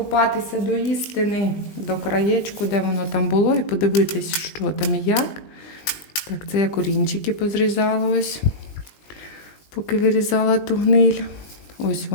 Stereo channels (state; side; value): late; right; 20 ms